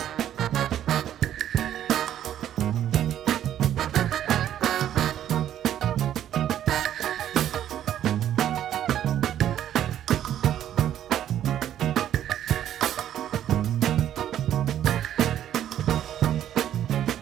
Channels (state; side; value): quieter; left; 11.0 dB